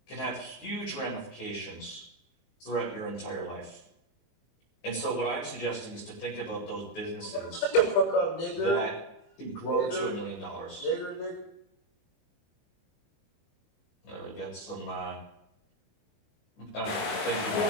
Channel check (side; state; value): right; late; 23 ms